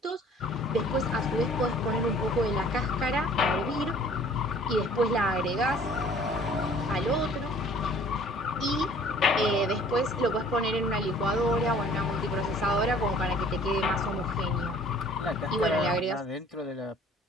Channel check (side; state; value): both; normal; correlation 0.53